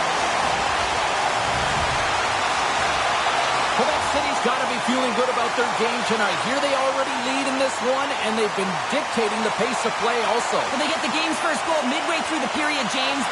City's got to be feeling good about their game tonight. Here they already lead in this one, and they've been dictating the pace of play also. Well, they get the game's first goal midway through the period, James,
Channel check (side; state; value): both; identical; correlation 1.00